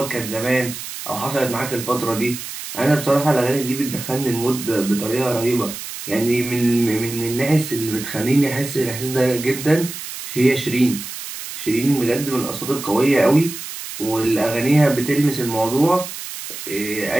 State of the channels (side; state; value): right; noise; hiss, 9 dB below the sound